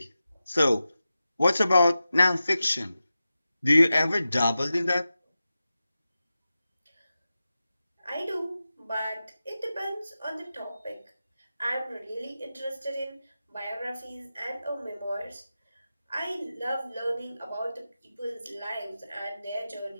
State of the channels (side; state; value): both; inverted; correlation -0.93